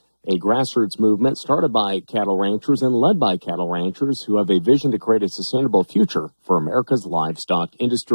a grassroots movement started by cattle ranchers and led by cattle ranchers who have a vision to create a sustainable future for America's livestock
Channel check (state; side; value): inverted; both; correlation -1.00